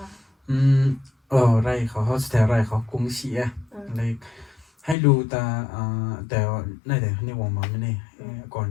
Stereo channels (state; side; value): drops out; right; at 5.0 s